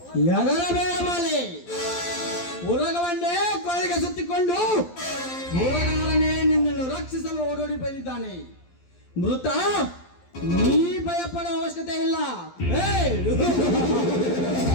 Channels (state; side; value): late; right; 12 ms